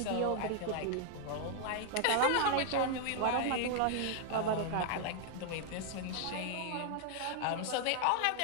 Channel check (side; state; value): both; different; correlation 0.00